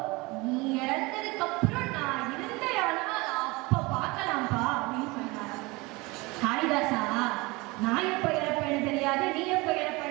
நீ இறந்ததுக்கு அப்புறம் நான் இருந்தேனா அப்ப பார்க்கலாம்ப்பா அப்படின்னு சொன்னார். காளிதாசா, நான் எப்ப இறப்பேன்னு தெரியாது, நீ எப்ப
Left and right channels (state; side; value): quieter; left; 24.1 dB